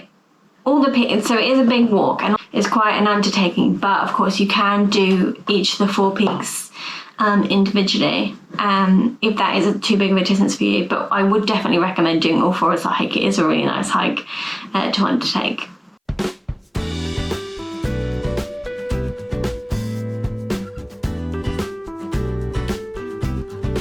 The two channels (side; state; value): both; identical; correlation 1.00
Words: is a big walk, and it's quite an undertaking. But of course, you can do each of the 4 peaks individually, if that is too big of a distance for you. But I would definitely recommend doing all 4 as a hike. It is a really nice hike to undertake.